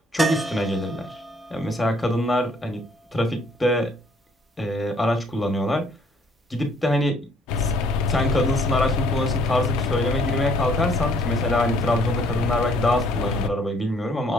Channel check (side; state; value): both; normal; correlation 0.63